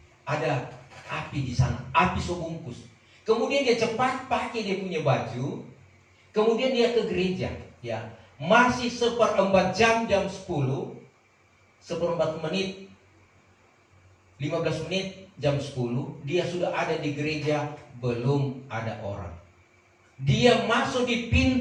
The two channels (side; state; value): both; identical; correlation 1.00